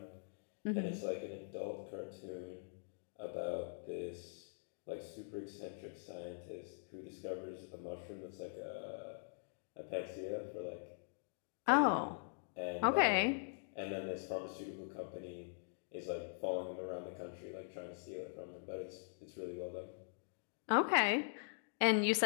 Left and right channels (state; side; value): silent; right; digital silence